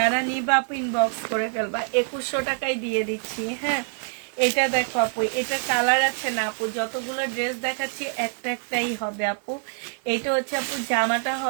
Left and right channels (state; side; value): silent; left; 62 dB below the other